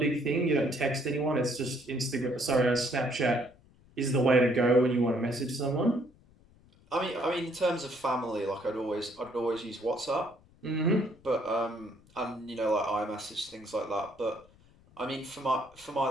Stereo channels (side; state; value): left; noise; rumble, 28 dB below the sound